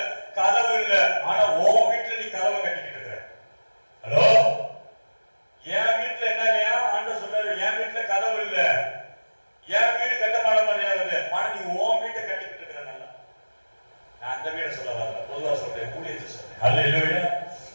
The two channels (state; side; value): inverted; both; correlation -1.00